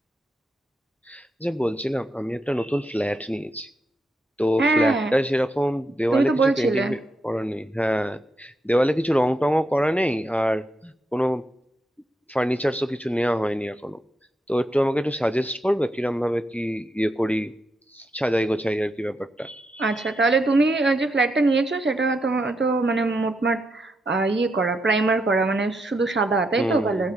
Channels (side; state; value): both; normal; correlation 0.82